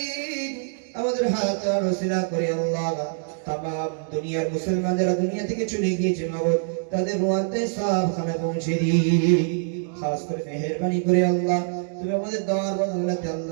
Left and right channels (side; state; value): left; silent; 62 dB below the other